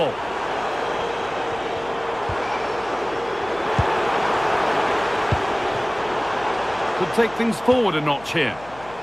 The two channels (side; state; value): left; noise; hum, 20 dB below the sound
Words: Could take things forward a notch here.